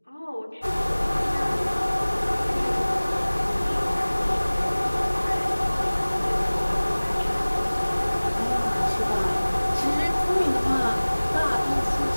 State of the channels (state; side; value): inverted; both; correlation -1.00